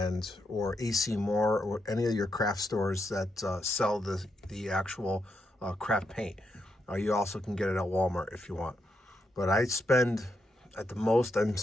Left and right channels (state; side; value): normal; both; correlation 0.82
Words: or AC Moore or any of your craft stores that sell the actual craft paint. You also can get it at Walmart if you want. But I spend, at the most, I'm